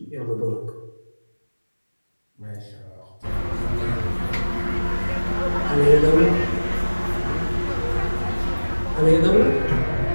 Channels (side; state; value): both; inverted; correlation -1.00